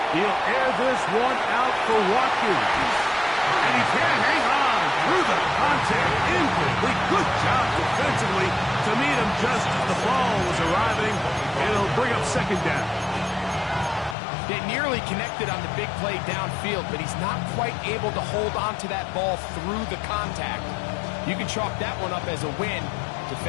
He'll air this one out for Watkins. And he can't hang on through the contact. Incomplete. Good job defensively to meet him just as the ball was arriving. It'll bring up 2nd down. They nearly connected on the big play downfield, but he's not quite able to hold on to that ball through the contact. You can chalk that one up as a win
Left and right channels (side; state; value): right; drops out; at 14.2 s